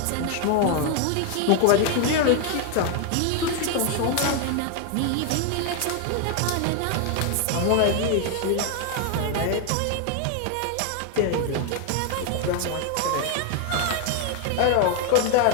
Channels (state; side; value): different; both; correlation 0.01